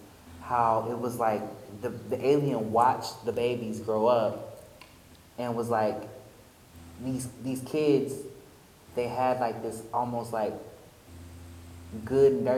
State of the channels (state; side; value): identical; both; correlation 1.00